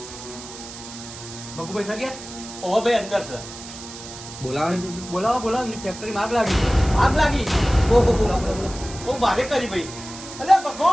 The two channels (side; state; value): right; noise; hiss, 13 dB below the sound